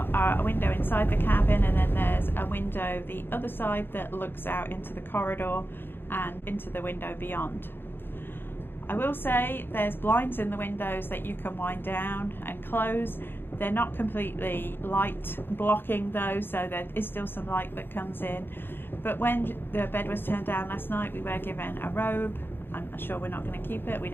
a window inside the cabin, and then there's a window the other side that looks out into the corridor and into the window beyond. I will say there's blinds in the windows that you can wind down and close. They're not completely light blocking though, so there is still some light that comes in. But when the bed was turned down last night, we were given a robe. I'm sure we're not going to keep it. We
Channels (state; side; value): late; right; 0.10 ms